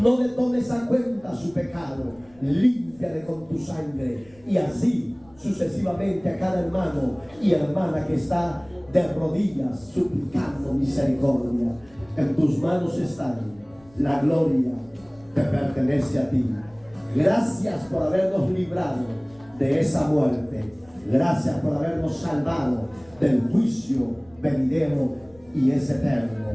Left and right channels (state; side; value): noise; left; rumble, 28 dB below the sound